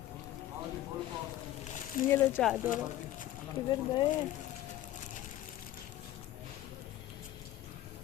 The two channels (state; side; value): quieter; right; 13.9 dB